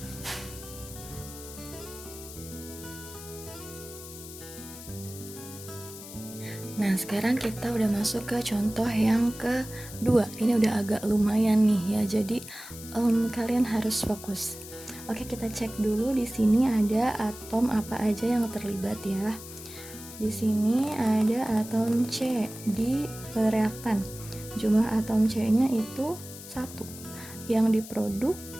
Nah, sekarang kita udah masuk ke contoh yang kedua. Ini udah agak lumayan nih ya, jadi kalian harus fokus. Oke, kita cek dulu di sini ada atom apa aja yang terlibat ya. Di sini ada atom C di reaktan. Jumlah atom C-nya itu 1. Yang diproduk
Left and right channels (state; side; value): noise; left; hiss, 14 dB below the sound